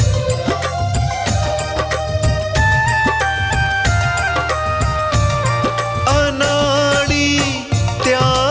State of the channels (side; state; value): both; identical; correlation 1.00